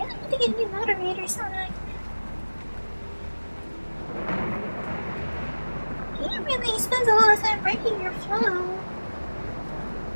need to get new moderators on it. He really spends a lot of time breaking your flow.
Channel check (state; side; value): inverted; both; correlation -1.00